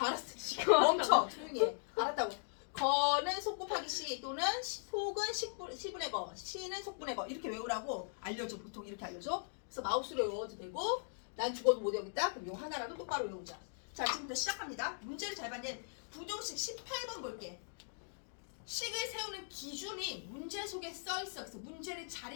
시커멓다. 멈춰. 조용히 해. 알았다고. 거는 속 곱하기 시 또는 속은 시분의 거, 시는 속분의 거 이렇게 외우라고 알려줘. 보통 이렇게 알려줘. 그래서 마우스로 외워도 되고 난 죽어도 못 외우겠다. 그럼 요 하나라도 똑바로 외우자. 자 지금부터 시작합니다. 문제를 잘 받는 부정식 18번 볼게. 식을 세우는 기준이 문제 속에 써있어. 그래서 문제를 잘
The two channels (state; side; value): silent; right; digital silence